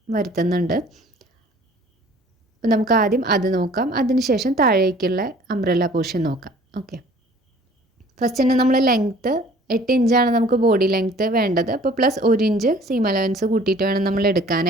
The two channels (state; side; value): normal; both; correlation 0.51